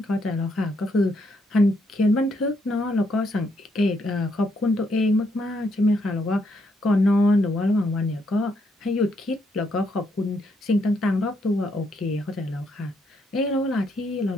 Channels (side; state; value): both; normal; correlation 0.75